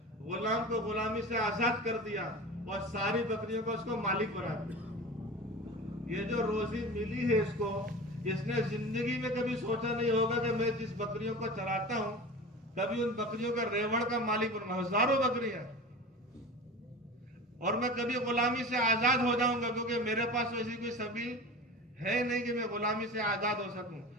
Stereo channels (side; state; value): both; normal; correlation 0.33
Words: غلام کو غلامی سے آزاد کر دیا اور ساری بکریوں کو اس کو مالک بنا دیا. یہ جو روزی ملی ہے اس کو، اس نے زندگی میں کبھی سوچا نہیں ہوگا کہ میں جس بکریوں کو چراتا ہوں کبھی ان بکریوں کا ریوڑ کا مالک بنوں، ہزاروں بکریاں، اور میں کبھی غلامی سے آزاد ہو جاؤں گا، کیونکہ میرے پاس ایسی کوئی سبیل ہے نہیں کہ میں غلامی سے آزاد ہو سکوں۔